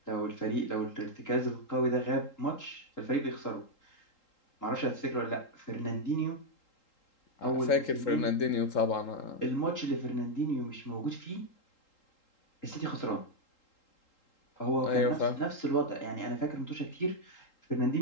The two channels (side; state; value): right; late; 3.8 ms